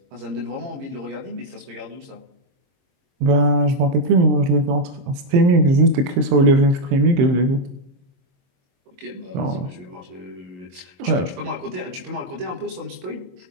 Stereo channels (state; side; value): late; left; 22 ms